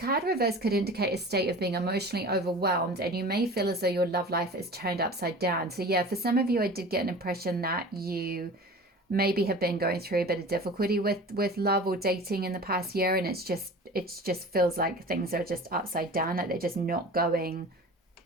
reverse could indicate a state of being emotionally overwhelmed, and you may feel as though your love life is turned upside down. So yeah, for some of you, I did get an impression that you maybe have been going through a bit of difficulty with love or dating in the past year, and it just feels like things are just upside down, like they're just not going.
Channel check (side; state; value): both; normal; correlation 0.38